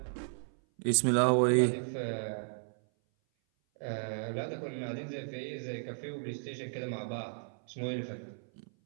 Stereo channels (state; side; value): silent; left; 55 dB below the other